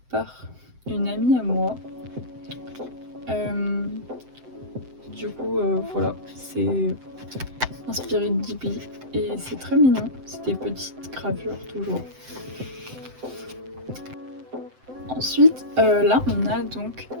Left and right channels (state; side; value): late; left; 7.8 ms